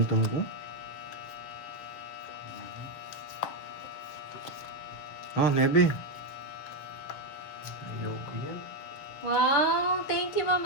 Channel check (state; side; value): late; right; 7.0 ms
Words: ko. Oh, 9. Ayoko yan. Wow, thank you, Ma'am